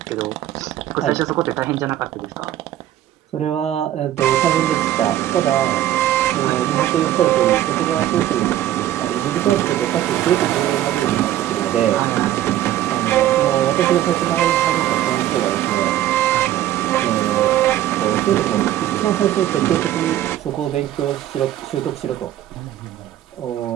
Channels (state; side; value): quieter; left; 12.8 dB